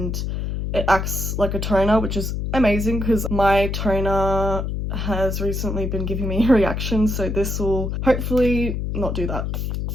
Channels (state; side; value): noise; left; hum, 2 dB below the sound